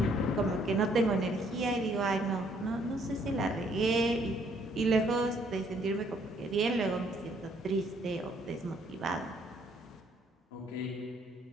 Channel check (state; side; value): normal; both; correlation 0.66